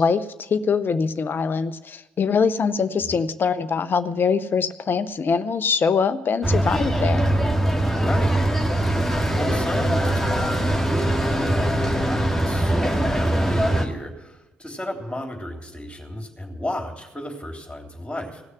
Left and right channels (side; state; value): both; normal; correlation 0.82